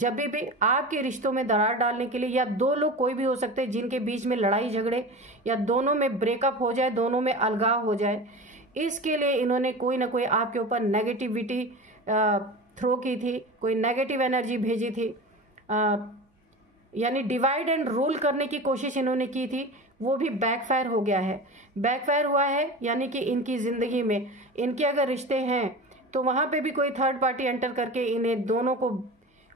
भी आपके रिश्तों में दरार डालने के लिए, या 2 लोग कोई भी हो सकते हैं जिनके बीच में लड़ाई झगड़े या दोनों में ब्रेकअप हो जाए, दोनों में अलगाव हो जाए, इसके लिए इन्होंने कोई ना कोई आपके ऊपर नेगेटिविटी थ्रो की थी, कोई नेगेटिव एनर्जी भेजी थी, यानी डिवाइड एंड रूल करने की कोशिश इन्होंने की थी, वो भी बैकफायर हो गया है। बैकफायर हुआ है यानी कि इनकी जिंदगी में इनके अगर रिश्ते हैं तो वहां पे भी कोई थर्ड पार्टी एंटर करके इन्हें दोनों को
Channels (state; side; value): normal; both; correlation 0.31